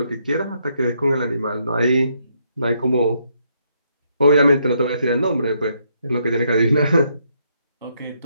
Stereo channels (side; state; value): both; inverted; correlation -0.75